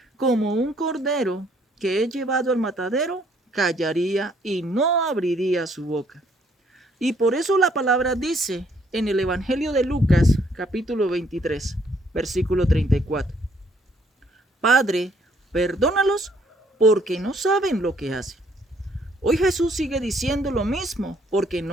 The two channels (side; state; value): both; normal; correlation 0.66